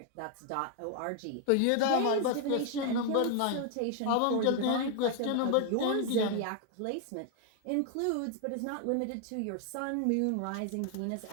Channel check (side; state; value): both; different; correlation 0.00